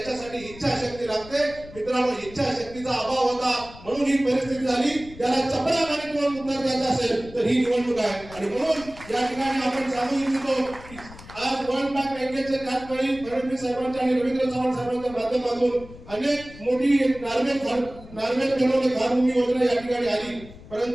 इच्छाशक्ती लागते. मित्रांनो, इच्छाशक्तीचा अभाव होता म्हणून ही परिस्थिती झाली. त्याला चपळामाने किंवा उत्तर द्यायचं असेल तर ही निवडणूक आहे. आणि म्हणून या ठिकाणी आपण सांगू इच्छितो की आज वर्ल्ड बँक बँकेचे त्याचवेळी फडणवीस साहेबांच्या आणि रवींद्र चव्हाण साहेबांच्या माध्यमातून अनेक मोठी नार्वेल बनवणे घरभूमी योजना या ठिकाणी आली.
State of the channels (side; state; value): left; noise; rumble, 18 dB below the sound